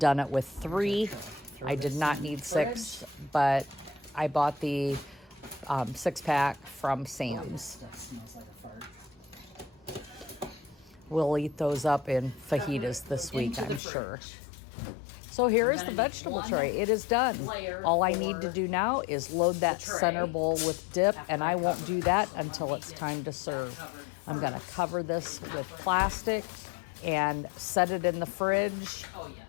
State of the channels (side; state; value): right; drops out; at 13.8 s